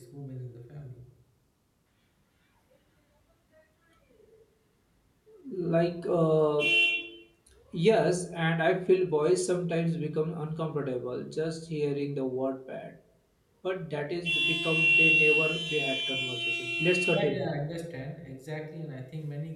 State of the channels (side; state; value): both; identical; correlation 1.00